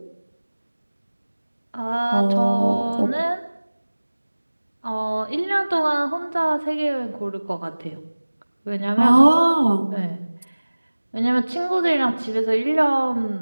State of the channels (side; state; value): both; inverted; correlation -1.00